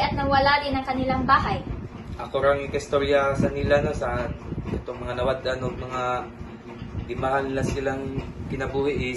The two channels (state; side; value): identical; both; correlation 1.00